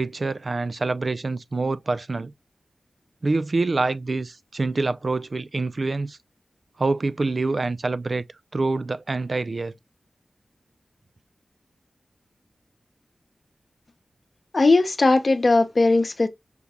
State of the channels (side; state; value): both; normal; correlation 0.94